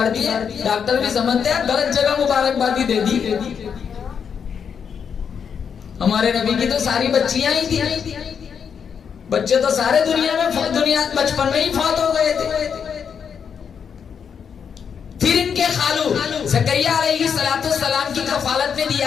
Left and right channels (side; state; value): right; quieter; 7.0 dB